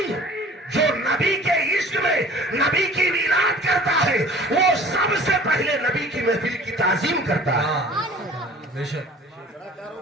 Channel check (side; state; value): both; normal; correlation 0.47